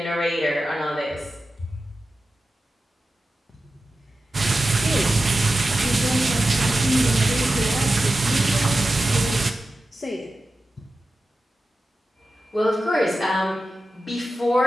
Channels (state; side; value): normal; both; correlation 0.93